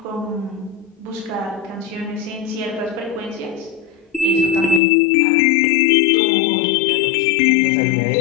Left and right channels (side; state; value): right; drops out; at 4.8 s